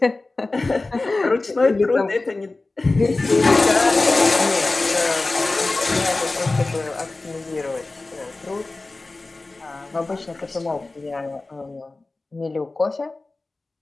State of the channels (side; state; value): right; quieter; 3.3 dB